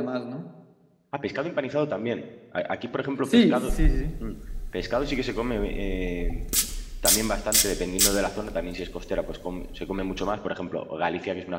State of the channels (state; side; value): identical; both; correlation 1.00